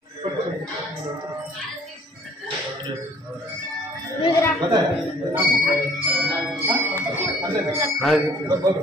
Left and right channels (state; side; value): normal; both; correlation 0.58